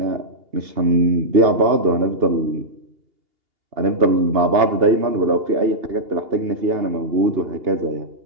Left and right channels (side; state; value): left; late; 2.8 ms